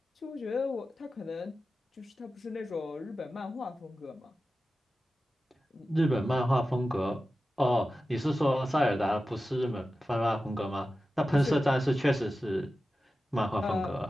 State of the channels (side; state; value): both; normal; correlation 0.93